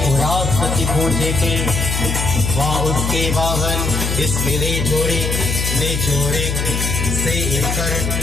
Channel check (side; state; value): left; noise; hum, 1 dB below the sound